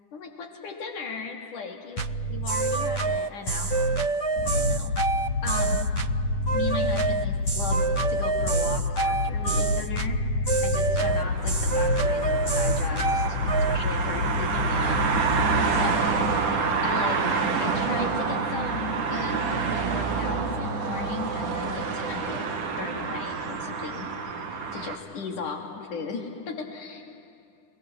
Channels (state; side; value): late; right; 10 ms